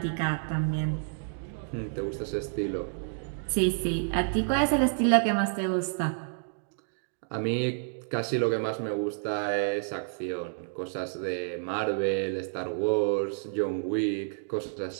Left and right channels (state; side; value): silent; left; digital silence